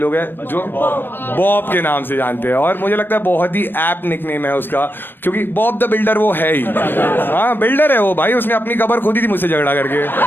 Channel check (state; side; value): late; right; 0.096 ms